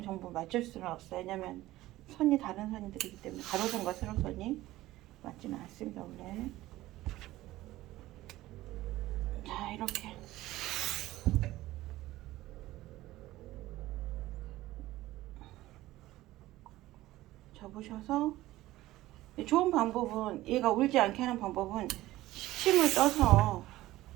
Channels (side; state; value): left; quieter; 16.6 dB